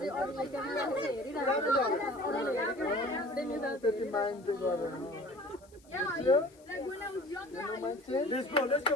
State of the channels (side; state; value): left; noise; hiss, 29 dB below the sound